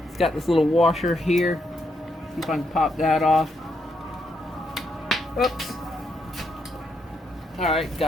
It's got this little washer here. See if I can pop that off. Oops. Alright,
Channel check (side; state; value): both; normal; correlation 0.79